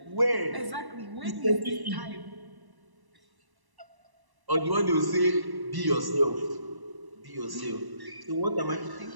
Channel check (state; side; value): late; left; 1.1 ms